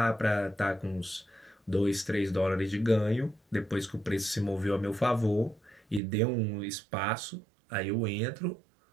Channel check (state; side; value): drops out; left; at 6.0 s